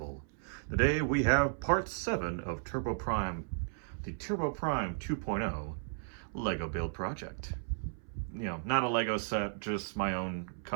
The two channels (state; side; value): silent; left; 55 dB below the other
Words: Today we have part 7 of Turboprime, the Turboprime 2.0 Lego build project. Not a Lego set, just my own